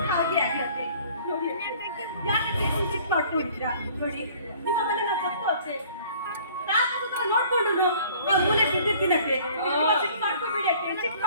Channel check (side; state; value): both; inverted; correlation -0.53